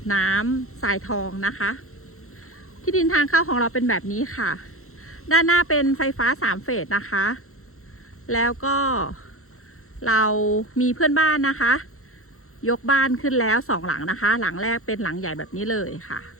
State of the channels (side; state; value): right; late; 0.63 ms